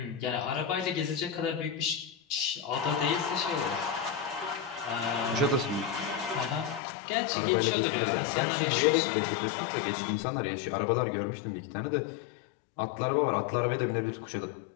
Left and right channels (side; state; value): right; drops out; at 6.8 s